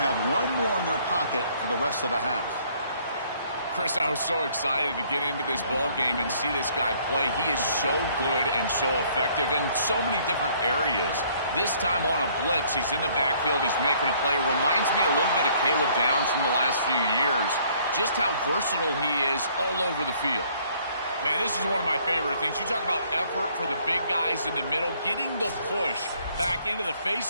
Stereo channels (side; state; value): both; inverted; correlation -0.62